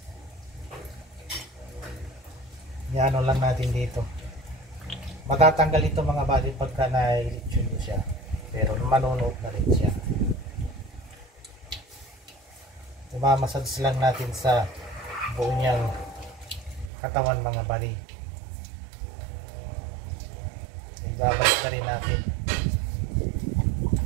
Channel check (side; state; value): left; drops out; at 16.9 s